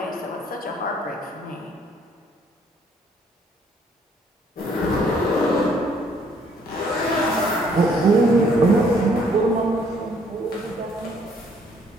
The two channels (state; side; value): normal; both; correlation 0.64